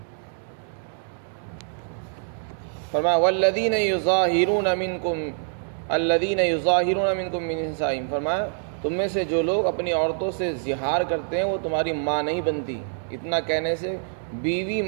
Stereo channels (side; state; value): left; silent; digital silence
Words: فرمایا والذین یظاہرون منکم من نسائہم، فرمایا تم میں سے جو لوگ اپنی عورتوں سے زہار کرتے ہیں وہ تمہاری ماں نہیں بنتی۔ اتنا کہنے سے بیوی